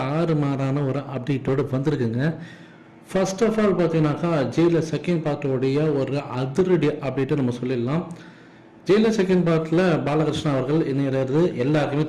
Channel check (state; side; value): identical; both; correlation 1.00